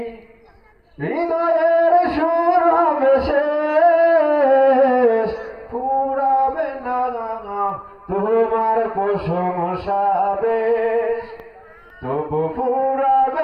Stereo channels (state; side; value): identical; both; correlation 1.00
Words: হৃদয়ের সুর হবে শেষ ফুরাবে না তোমার প্রশংসা বেশ তবু